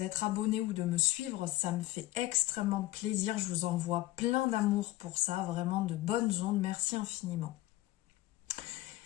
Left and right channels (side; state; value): right; quieter; 16.5 dB